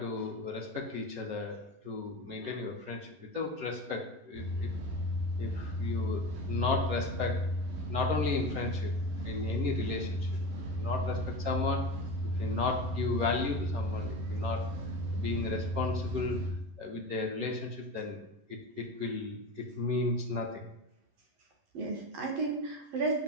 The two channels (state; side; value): late; left; 11 ms